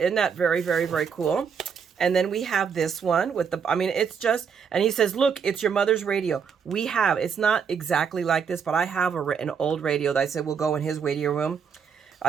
isn't that very, very, very cool? And then we have this one with the, I mean, it's just, and he says, look, it's your mother's radio. It's not exactly like this, but I have an old radio that I said will go in his radio room.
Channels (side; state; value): left; quieter; 6.7 dB